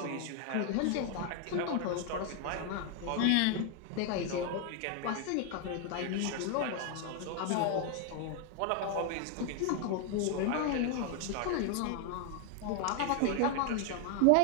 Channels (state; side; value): different; both; correlation 0.00